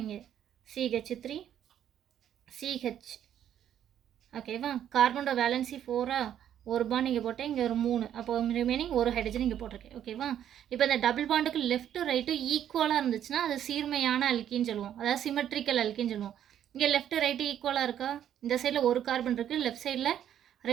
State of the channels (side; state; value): left; quieter; 10.3 dB